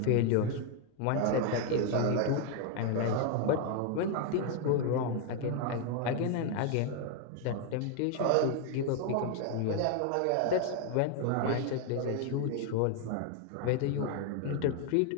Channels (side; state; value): both; different; correlation 0.00